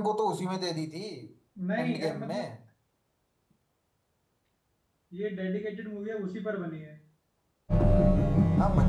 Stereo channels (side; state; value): both; identical; correlation 1.00